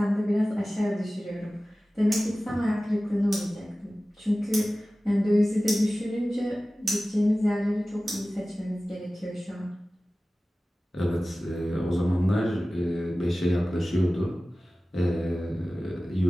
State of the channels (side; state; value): both; normal; correlation 0.96